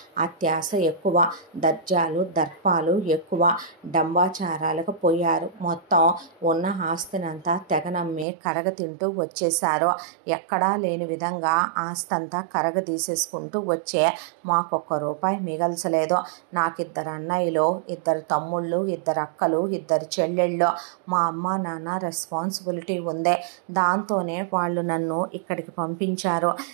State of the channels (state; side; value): drops out; left; at 8.2 s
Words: అత్యాశ ఎక్కువ, దర్జాలు దర్పాలు ఎక్కువ, డంబాచారాలకు పోయారు. మొత్తం ఉన్న ఆస్తినంతా తెగనమ్మి కరగతింటూ వచ్చేశారు. ఎక్కడా లేని విధంగా ఆస్తంతా కరగదీసేసుకుంటూ వచ్చే మాకొక్క రూపాయి మిగల్చలేదు. నాకిద్దరు అన్నయ్యలు, ఇద్దరు తమ్ముళ్ళు, ఇద్దరు అక్కలు, ఇద్దరు చెల్లెళ్ళు. మా అమ్మ నాన్న రెస్పాన్సిబిలిటీ ఉంది. దాంతోనే వాళ్ళు నన్ను ఇక్కడికి పంపించారు.